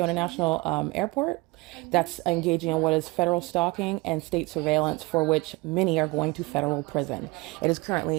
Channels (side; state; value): left; quieter; 23.8 dB